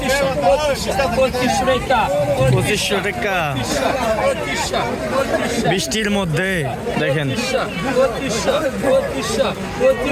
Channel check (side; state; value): both; identical; correlation 1.00